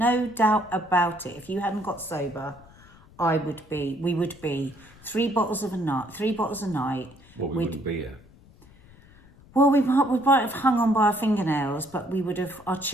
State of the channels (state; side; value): noise; left; rumble, 25 dB below the sound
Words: doubt about it. If you hadn't got sober, we would be 3 bottles a night. Well, we wouldn't be here. Well, we might have hung on by our fingernails, but our